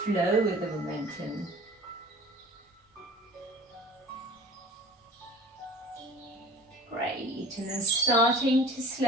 flow with the momentum. Great, and then starting to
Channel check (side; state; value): both; normal; correlation 0.45